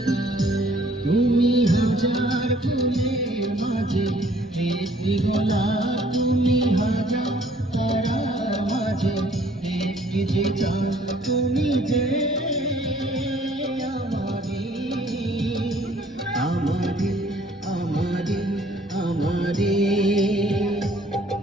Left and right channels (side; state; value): both; normal; correlation 0.59